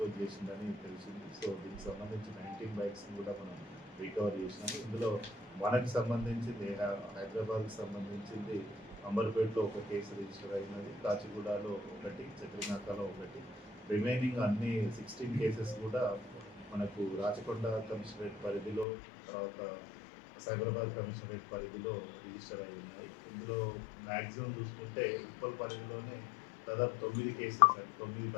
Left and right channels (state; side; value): drops out; right; at 18.9 s